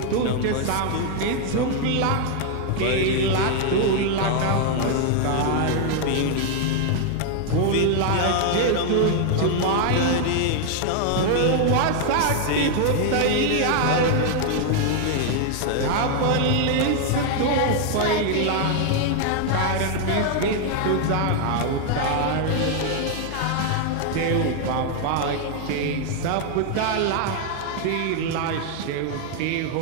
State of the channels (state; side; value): different; both; correlation 0.00